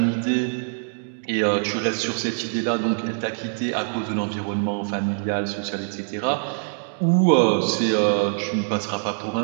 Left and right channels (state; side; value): silent; left; digital silence